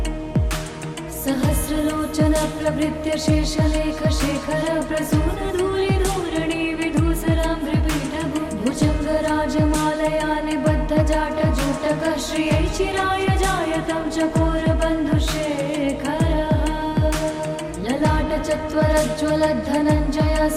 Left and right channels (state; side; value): identical; both; correlation 1.00